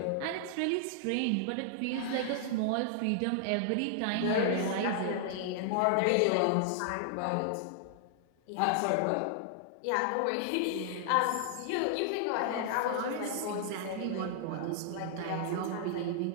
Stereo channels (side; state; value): both; different; correlation -0.01